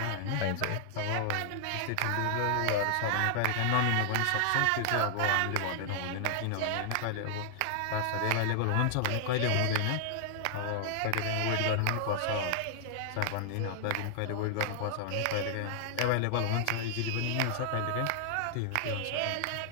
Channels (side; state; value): both; different; correlation -0.01